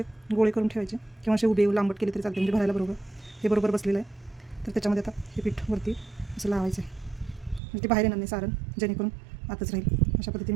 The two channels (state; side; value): drops out; left; at 7.6 s